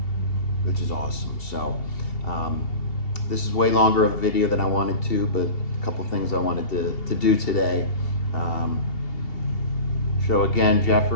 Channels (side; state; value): right; late; 2.7 ms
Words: which is awesome. So this is way longer of a video than I wanted to, but a couple things I wanted to do today. So again,